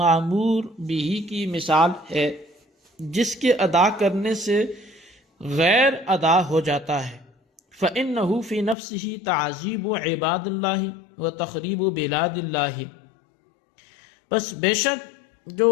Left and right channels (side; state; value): right; drops out; at 8.8 s